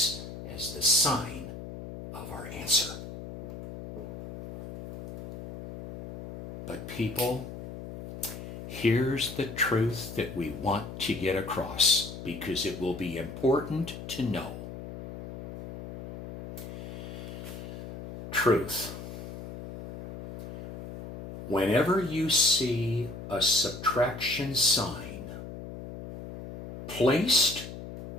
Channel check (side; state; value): left; noise; hum, 10 dB below the sound